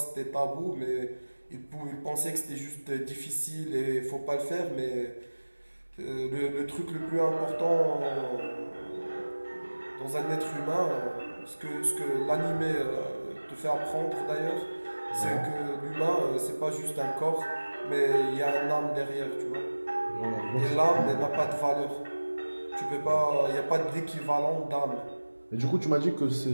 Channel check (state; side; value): inverted; both; correlation -1.00